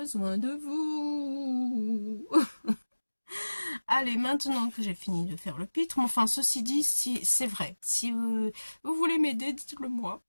de vous. Allez, maintenant que j'ai fini de faire le pitre, enfin, ceci dit, si c'est vrai. Si vous voulez m'aider, dites-le moi.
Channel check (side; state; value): both; inverted; correlation -1.00